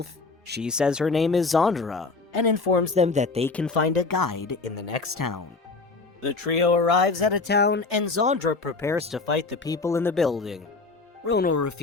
She says her name is Zandra, and informs them that they can find a guide in the next town. The trio arrives at a town, and Zandra prepares to fight the people in the building. Ronal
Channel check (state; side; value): quieter; right; 3.9 dB